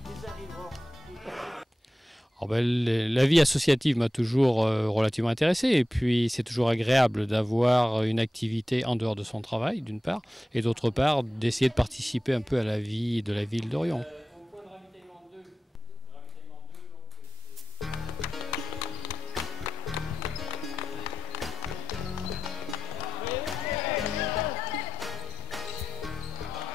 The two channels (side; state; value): both; normal; correlation 0.93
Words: La vie associative m'a toujours relativement intéressé, et puis c'est toujours agréable d'avoir une activité en dehors de son travail d'une part, et d'autre part d'essayer de participer un peu à la vie de la ville d'Orion.